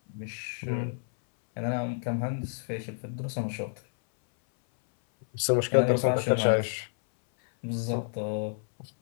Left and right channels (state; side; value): silent; right; 58 dB below the other